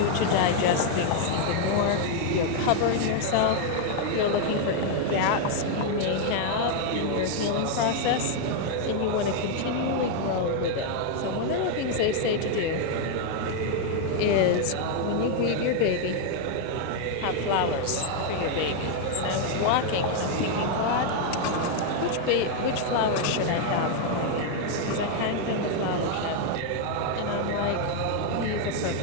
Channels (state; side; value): different; both; correlation 0.00